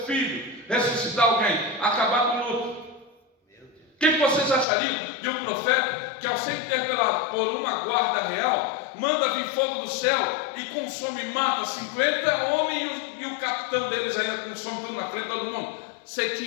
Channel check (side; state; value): right; drops out; at 4.7 s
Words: filho, ressuscitar alguém, acabar com o luto? O que vocês achariam de um profeta que, ao ser interpelado por uma guarda real, manda vir fogo do céu e consome e mata 50 homens e o capitão deles ainda consome tudo na frente de todo mundo? Você